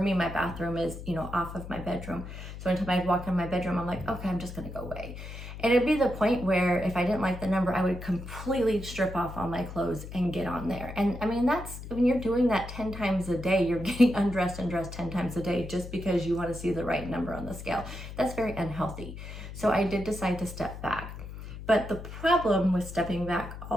my bathroom is, off of my bedroom. So anytime I walk in my bedroom, I'm like, okay, I'm just going to go weigh. And it'd be the point where if I didn't like the number, I would completely strip off all my clothes and get on there. And I mean, that's when you're doing that 10 times a day, you're getting undressed and dressed 10 times a day just because you want to see the right number on the scale. That's very unhealthy. So I did decide to step back. But the problem with stepping back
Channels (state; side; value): noise; left; hum, 11 dB below the sound